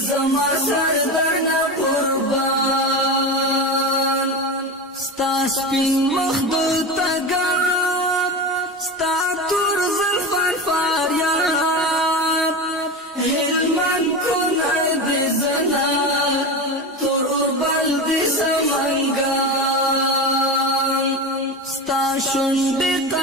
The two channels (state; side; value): normal; both; correlation 0.23